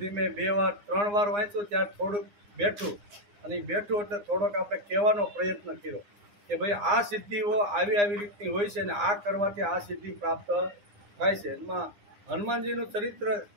ધીમે 2 વાર 3 વાર વાંચ્યું ત્યારે થોડુંક બેઠું, અને એ બેઠું એટલે થોડોક આપણે કહેવાનો પ્રયત્ન કર્યો કે ભાઈ આ સિદ્ધિઓ આવી આવી રીતની હોય છે, ને આ કરવાથી આ સિદ્ધિ પ્રાપ્ત થાય છે. એમાં હનુમાનજીનું ચરિત્ર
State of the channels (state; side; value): late; left; 9.8 ms